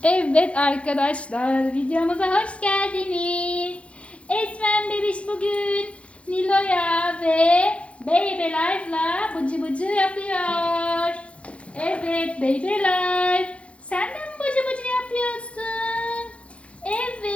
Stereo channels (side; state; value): right; late; 0.061 ms